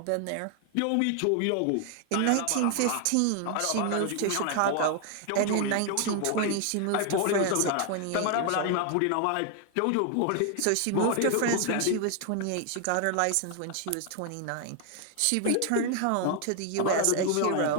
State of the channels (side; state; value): both; different; correlation 0.00